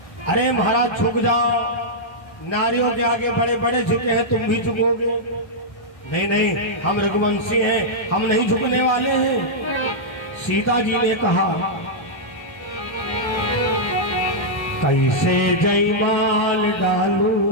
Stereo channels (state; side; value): late; right; 1.3 ms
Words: अरे महाराज झुक जाओ, नारियों के आगे बड़े बड़े झुके हैं, तुम भी झुकोगे? नहीं नहीं, हम रघुवंशी हैं, हम नहीं झुकने वाले हैं। सीता जी ने कहा कैसे जयमाल